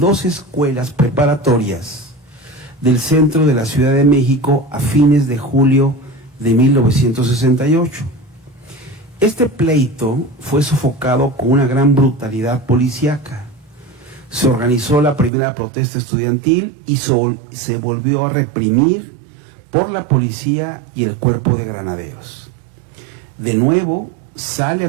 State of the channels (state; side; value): drops out; left; at 15.3 s